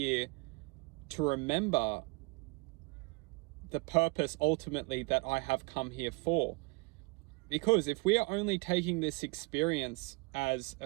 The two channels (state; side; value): quieter; left; 28.2 dB